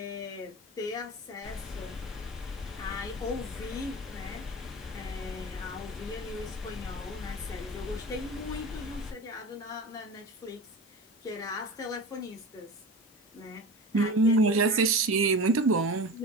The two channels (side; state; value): both; normal; correlation 0.31